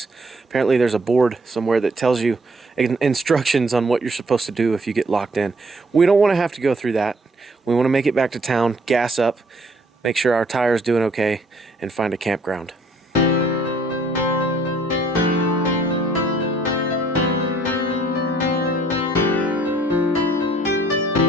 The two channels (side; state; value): both; normal; correlation 0.62